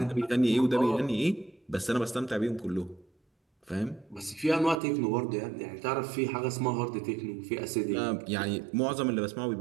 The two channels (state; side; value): drops out; left; at 4.8 s